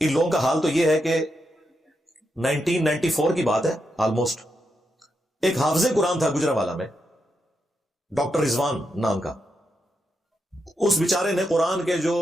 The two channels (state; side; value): normal; both; correlation 0.84